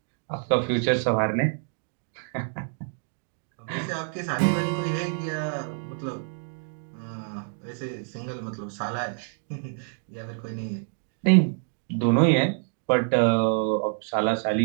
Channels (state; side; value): silent; left; 60 dB below the other